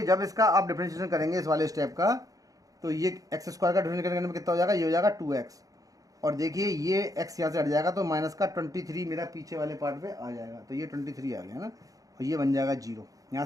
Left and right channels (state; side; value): late; left; 0.17 ms